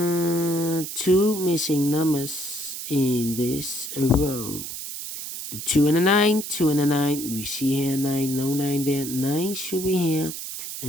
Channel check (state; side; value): noise; right; hiss, 8 dB below the sound